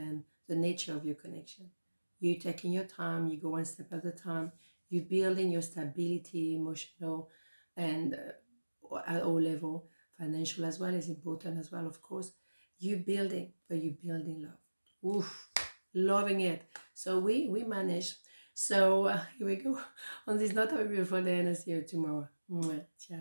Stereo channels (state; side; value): inverted; both; correlation -1.00